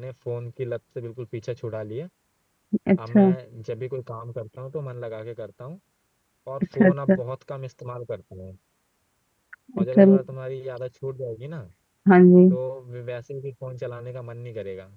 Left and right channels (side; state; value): both; identical; correlation 1.00